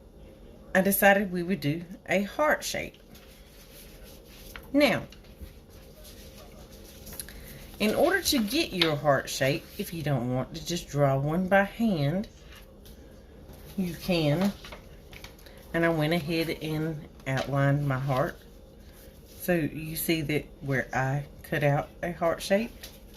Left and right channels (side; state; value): both; identical; correlation 1.00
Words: I decided we would do a heart shape. Now, in order to get your heart shape, if you don't want to just draw one by hand, you can. And I went ahead and outlined my heart. So you see that where I cut out a heart shape,